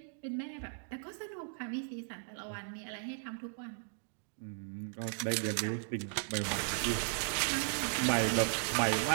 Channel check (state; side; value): silent; left; digital silence